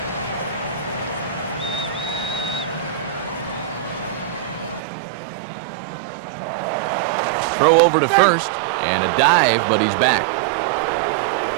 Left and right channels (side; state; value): left; drops out; at 4.8 s